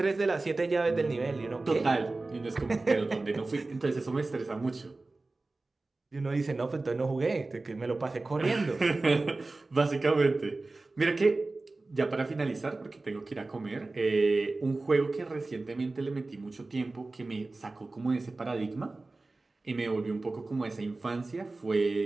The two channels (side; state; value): left; quieter; 3.3 dB